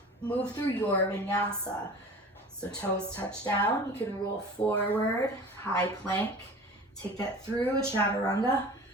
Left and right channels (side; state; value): both; normal; correlation 0.40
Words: Move through your vinyasa. So toes touch down. You can roll forward, high plank. Take that through a chaturanga.